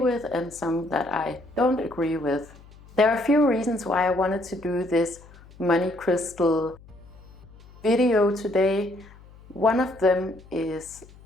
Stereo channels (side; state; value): left; noise; hum, 23 dB below the sound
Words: and some that I don't agree with. There are a few reasons why I wanted to do this money crystal video today. One of them is